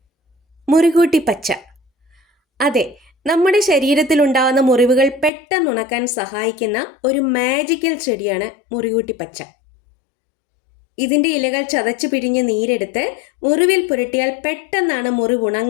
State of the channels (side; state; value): right; drops out; at 5.3 s